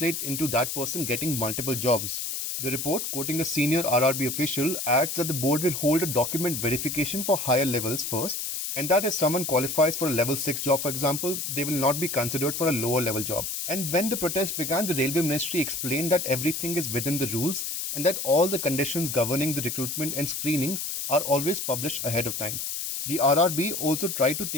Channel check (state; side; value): noise; left; hiss, 3 dB below the sound